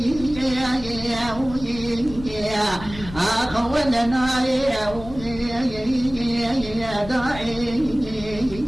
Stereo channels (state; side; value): noise; left; rumble, 14 dB below the sound